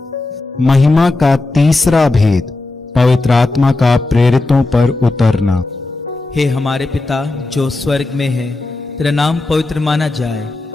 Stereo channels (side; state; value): right; quieter; 3.1 dB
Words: महिमा का तीसरा भेद, पवित्र आत्मा का प्रेरितों पर उतरना। हे हमारे पिता जो स्वर्ग में है, तेरा नाम पवित्र माना जाए,